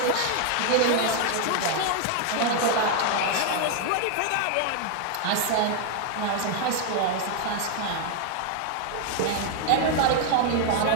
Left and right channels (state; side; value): different; both; correlation 0.00